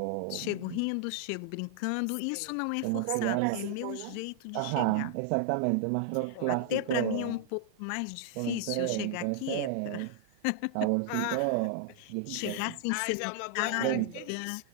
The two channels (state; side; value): different; both; correlation -0.01